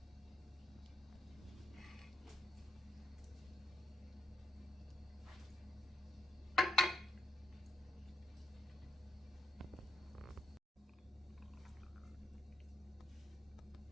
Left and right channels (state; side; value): normal; both; correlation 0.78